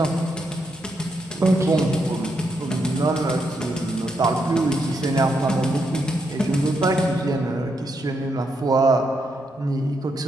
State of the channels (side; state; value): both; normal; correlation 0.80